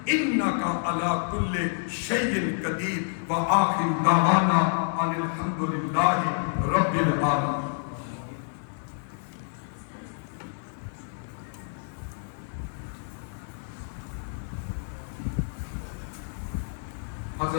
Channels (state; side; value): silent; right; digital silence